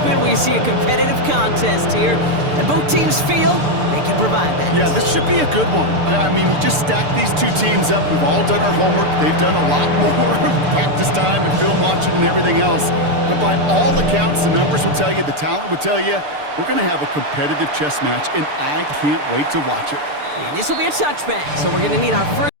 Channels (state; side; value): late; left; 6.8 ms